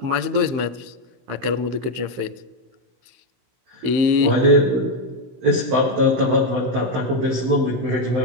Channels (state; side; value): late; left; 15 ms